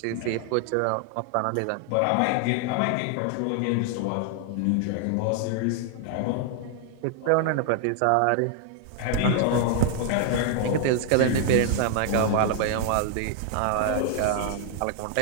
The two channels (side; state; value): both; different; correlation 0.00